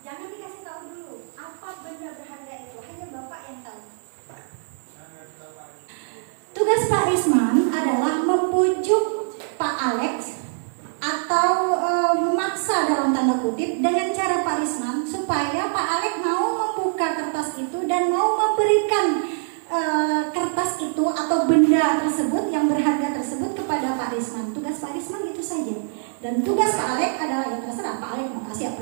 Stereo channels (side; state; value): left; silent; 63 dB below the other